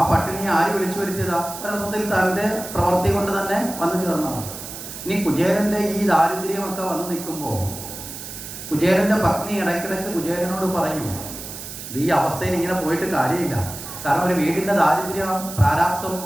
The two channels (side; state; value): right; noise; hiss, 10 dB below the sound